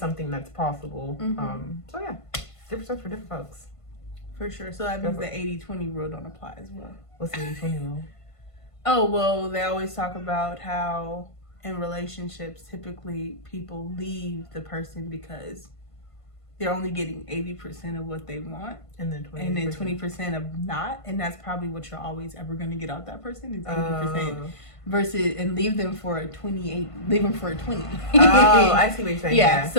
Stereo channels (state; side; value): late; right; 1.5 ms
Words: that's possible. So yeah, different stuff for different folks. For sure. So that means the 80-20 rule don't apply as well. What's the 80-20 rule? Oh, well, they always talk about how in relationships, typically people leave the person because they're only getting 80% of what they want. And then 20% of not. And that's probably what you're always ever going to get out that person is 80%. Versus, and leave them for a 20. Oh, I see what you're saying. Yeah.